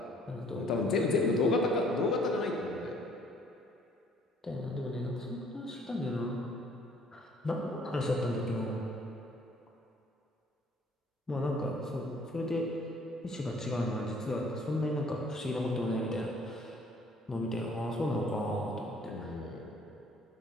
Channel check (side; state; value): both; normal; correlation 0.59